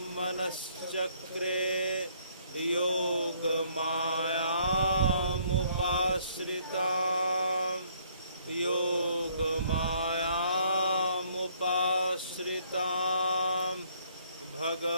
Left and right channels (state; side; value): inverted; both; correlation -0.64